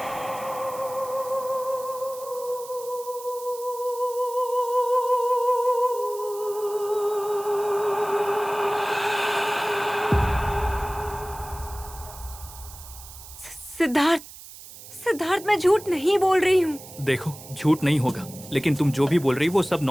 सिद्धार्थ, मैं झूठ नहीं बोल रही हूँ। देखो, झूठ नहीं होगा, लेकिन तुम जो भी बोल रही हो वो सब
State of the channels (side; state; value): right; noise; hiss, 16 dB below the sound